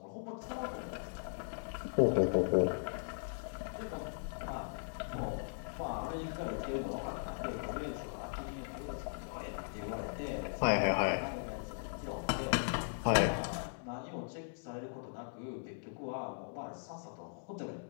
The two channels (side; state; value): right; silent; digital silence